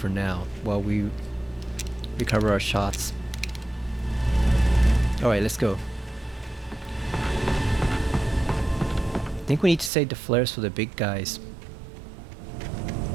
now while we recover our shots. Alright, let's go. I think we need to save the flares for the big guys.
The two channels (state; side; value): drops out; left; at 9.9 s